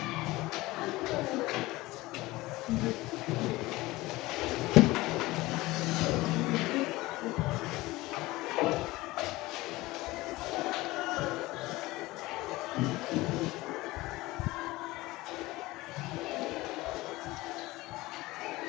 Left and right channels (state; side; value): quieter; right; 19.7 dB